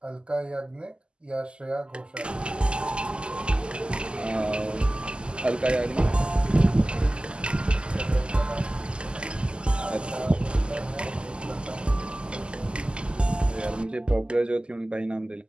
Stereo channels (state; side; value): late; left; 0.050 ms